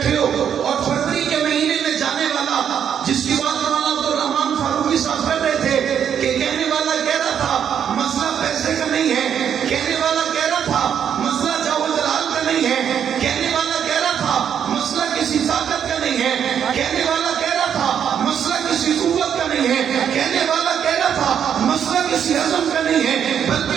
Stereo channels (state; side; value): quieter; left; 8.5 dB